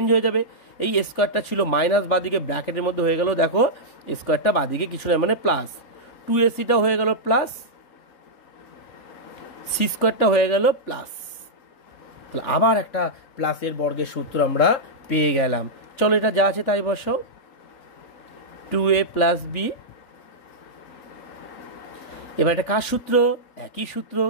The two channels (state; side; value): late; right; 3.4 ms